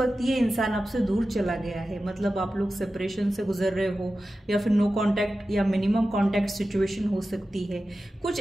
ये इंसान आपसे दूर चला गया है। मतलब आप लोग सेपरेशन से गुजर रहे हो या फिर नो कांटेक्ट या मिनिमम कांटेक्ट सिचुएशन हो सकती है। कुछ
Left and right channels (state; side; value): normal; both; correlation 0.94